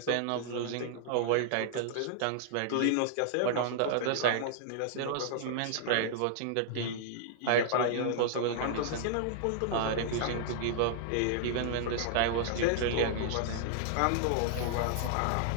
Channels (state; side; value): different; both; correlation -0.01